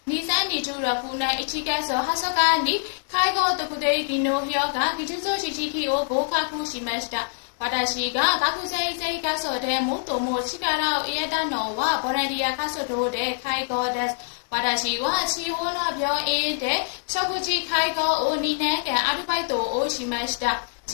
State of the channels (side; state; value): right; silent; digital silence